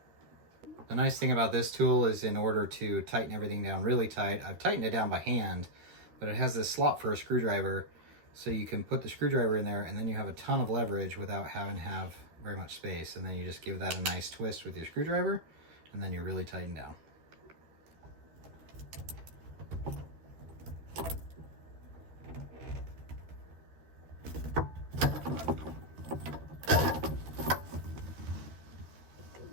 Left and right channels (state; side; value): late; left; 13 ms